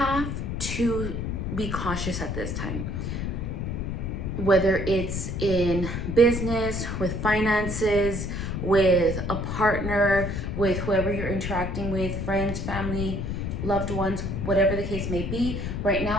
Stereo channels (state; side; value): noise; left; rumble, 3 dB below the sound